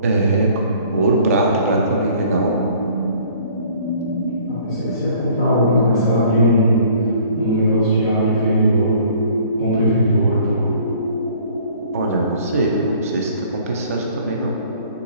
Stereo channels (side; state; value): both; inverted; correlation -0.55